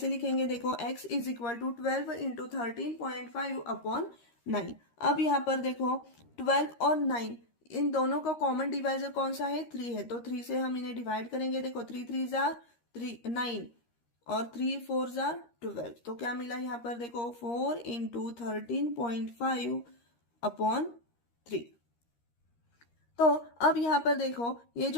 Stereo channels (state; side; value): late; right; 13 ms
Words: लिखेंगे, देखो x is equal to 12 into 13.5 upon 9। अब यहाँ पर देखो 12 और 9 इन दोनों का कॉमन डिवाइजर कौन सा है, 3 है। तो 3 से हम इन्हें डिवाइड करेंगे, देखो 3 3 जार 9 और 3 4 जार 12। तो क्या मिला यहाँ पर, देखो 4 इंटू 13.5 अपॉन 3। तो अब यहाँ पर देखो ये